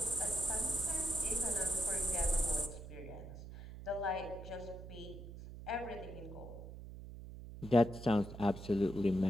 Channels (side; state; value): right; noise; hum, 12 dB below the sound